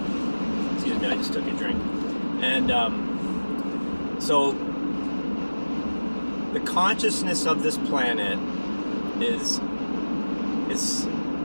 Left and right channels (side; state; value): both; inverted; correlation -1.00